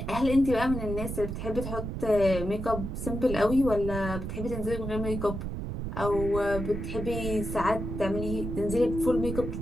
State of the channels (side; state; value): right; noise; rumble, 5 dB below the sound